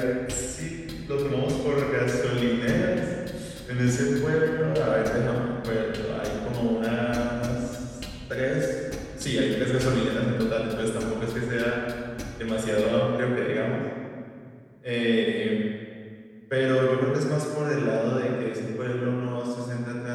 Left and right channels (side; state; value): both; identical; correlation 1.00